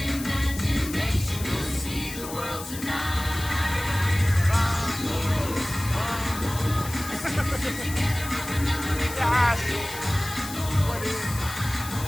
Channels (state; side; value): noise; left; hiss, 11 dB below the sound